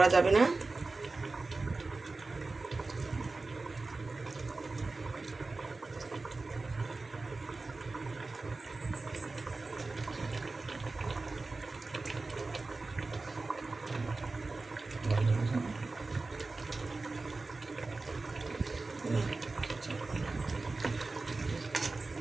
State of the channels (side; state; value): left; quieter; 3.5 dB